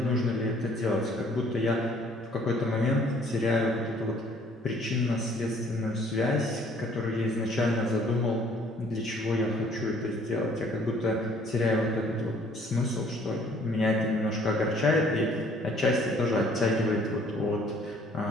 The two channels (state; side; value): normal; both; correlation 0.59